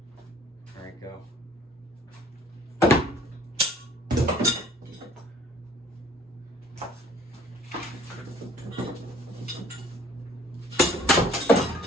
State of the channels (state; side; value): normal; both; correlation 0.55